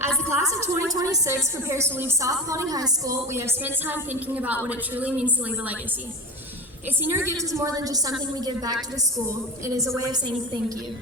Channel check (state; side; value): normal; both; correlation 0.26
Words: As the class of 2026 prepares to leave South Paulding High School, we have spent time thinking about what it truly means to leave a legacy. A senior gift is more than just something we give back to the school. It is a way of saying thank you.